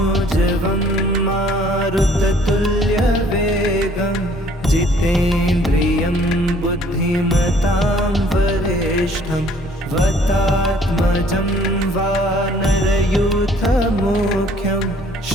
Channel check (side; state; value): both; normal; correlation 0.58